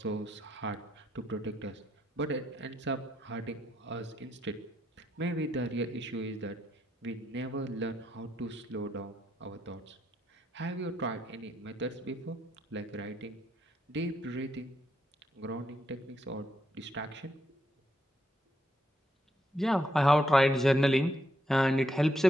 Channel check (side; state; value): both; normal; correlation 0.78